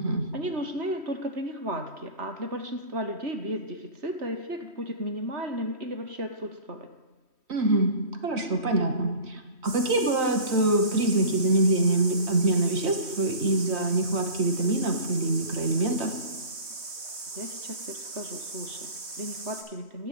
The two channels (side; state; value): left; late; 3.1 ms